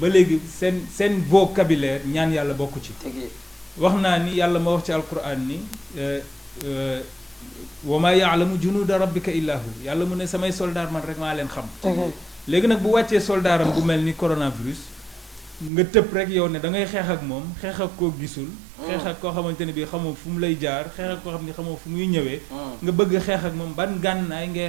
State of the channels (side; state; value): left; drops out; at 15.7 s